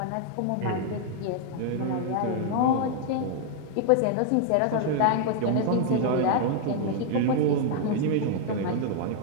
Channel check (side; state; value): both; different; correlation 0.00